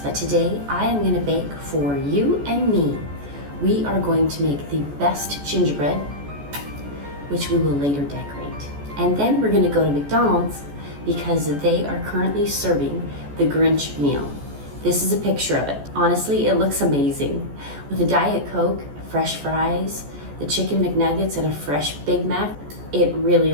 but today I am going to bake for you and me. We are going to make the best gingerbread, which we will later decorate. And then we're going to go to McDonald's because they are currently serving the Grinch meal. This is a picture of it. Honestly, it looks amazing. With a Diet Coke, fresh fries, the chicken McNuggets, and a fresh Big Mac, it really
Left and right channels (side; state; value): left; late; 14 ms